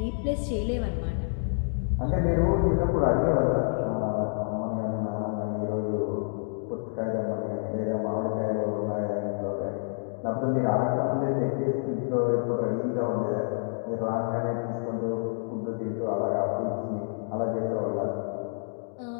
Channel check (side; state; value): right; silent; digital silence